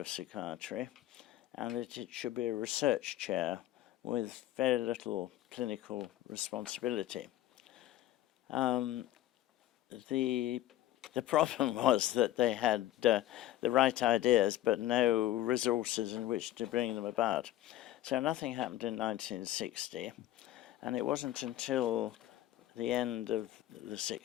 psychiatry and that it should be a research chair with very little clinical responsibility. The problem was that they had the right ideas but no resources in which to bring them about. So nothing happened in 1960, and it wasn't until the end of the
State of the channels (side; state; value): right; quieter; 13.9 dB